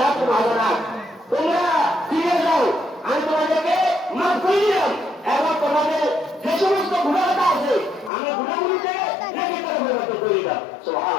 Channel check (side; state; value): right; drops out; at 8.1 s